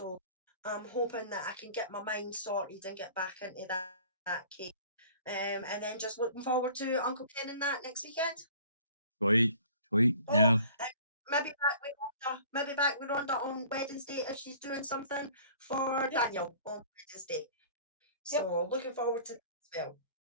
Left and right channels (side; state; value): both; inverted; correlation -0.49